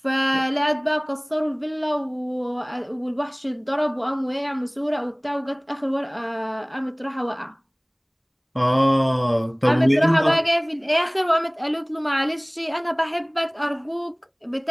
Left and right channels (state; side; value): identical; both; correlation 1.00